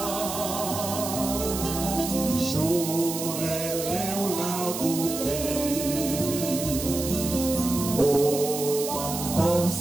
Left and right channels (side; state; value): right; noise; hiss, 6 dB below the sound